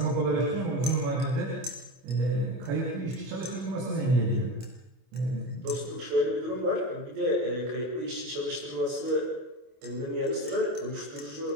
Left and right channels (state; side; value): late; left; 24 ms